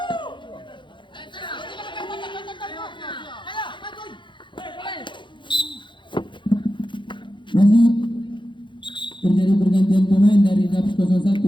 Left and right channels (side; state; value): right; late; 0.23 ms